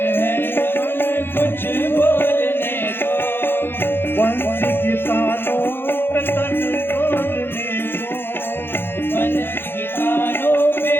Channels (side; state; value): right; late; 0.10 ms